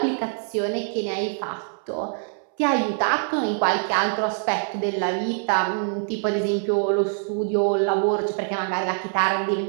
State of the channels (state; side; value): silent; left; 62 dB below the other